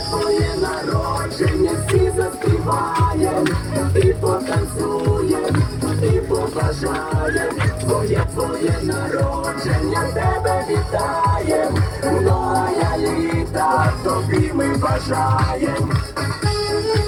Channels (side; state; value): both; identical; correlation 1.00